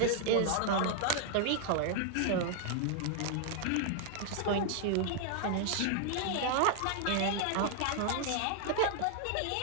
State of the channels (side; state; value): both; different; correlation 0.00